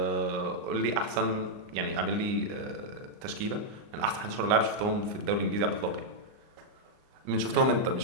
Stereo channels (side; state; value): left; late; 38 ms